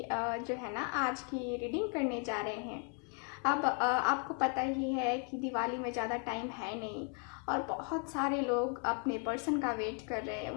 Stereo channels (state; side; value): quieter; right; 37.6 dB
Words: जो है ना आज की रीडिंग करने जा रहे हैं। अब आपको पता ही है कि दिवाली में ज़्यादा टाइम है नहीं और बहुत सारे लोग अपने पर्सन का वेट कर रहे हैं,